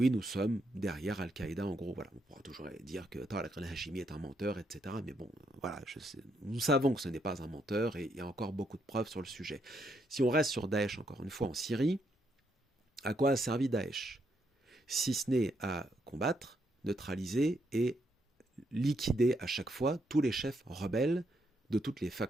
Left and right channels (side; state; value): both; normal; correlation 0.76